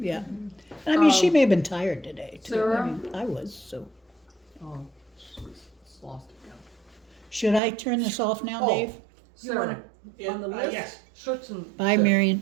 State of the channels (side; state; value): left; drops out; at 7.6 s